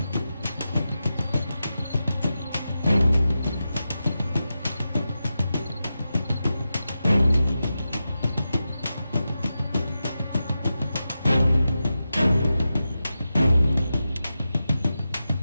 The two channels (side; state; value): both; inverted; correlation -0.91